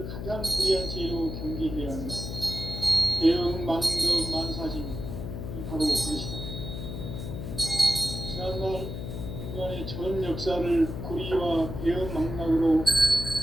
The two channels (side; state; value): left; noise; hum, 6 dB below the sound